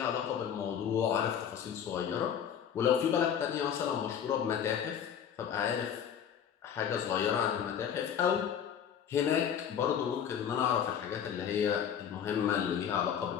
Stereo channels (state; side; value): quieter; right; 8.5 dB